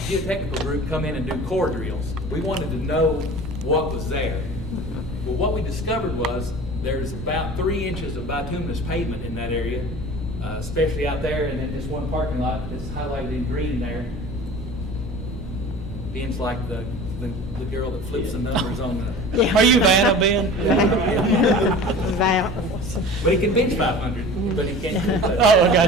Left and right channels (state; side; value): normal; both; correlation 0.39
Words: geotechnical group come in and do core drills. We wanted to know what was there. Well, what we discovered was there's about 3 inches of bituminous pavement in that area, especially out there, and in this one parking lot that's highlighted in green there. Ben's like the girl that flips the numbers on the. Are you Vanna, Ben? But he can bench 500, but he can't. Oh, I